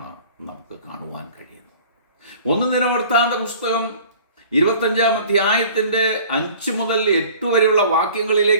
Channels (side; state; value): both; inverted; correlation -0.48